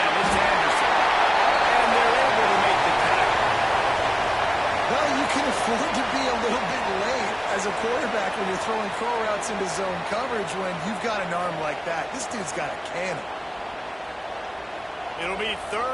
It's Anderson. And they're able to make the tackle. Well, you can afford to be a little bit late as a quarterback when you're throwing curl routes into zone coverage when you've got an arm like that. This dude's got a cannon. It'll be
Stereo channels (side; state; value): both; identical; correlation 1.00